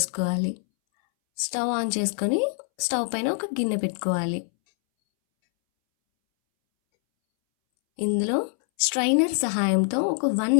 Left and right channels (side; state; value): right; silent; 62 dB below the other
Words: స్టవ్ ఆన్ చేసుకొని స్టవ్ పైన ఒక గిన్నె పెట్టుకోవాలి. ఇందులో స్ట్రైనర్ సహాయంతో ఒక 1